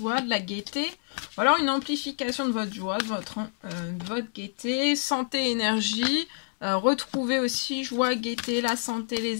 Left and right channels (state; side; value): silent; right; 60 dB below the other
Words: de la gaieté, ou alors une amplification de votre joie, de votre gaieté, santé, énergie. Retrouver aussi joie, gaieté, la santé,